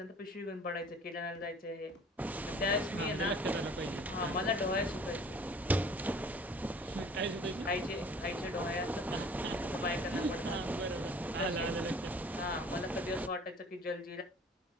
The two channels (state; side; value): normal; both; correlation 0.50